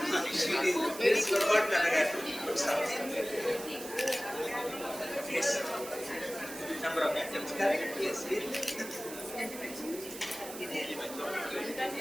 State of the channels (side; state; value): right; noise; hiss, 12 dB below the sound